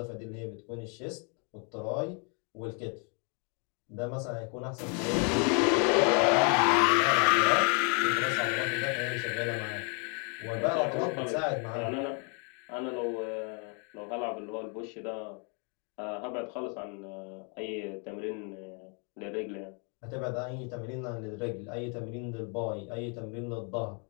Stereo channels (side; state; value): right; quieter; 37.4 dB